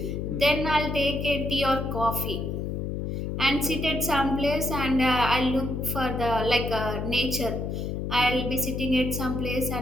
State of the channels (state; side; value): noise; left; hum, 3 dB below the sound